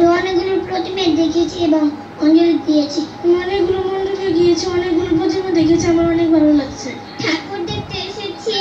অনেকগুলো প্রতিমা দেখেছি এবং অঞ্জলি দিয়েছি। অনেকগুলো মণ্ডপে গিয়েছি, অনেকগুলো প্রতিমা দেখেছি, আমার অনেক ভালো লাগছে। ঠাকুর দেখতে এসেছি,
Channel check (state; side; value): identical; both; correlation 1.00